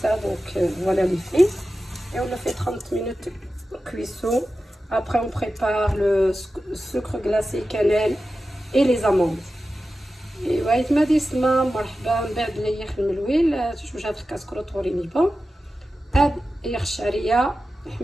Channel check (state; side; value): normal; both; correlation 0.93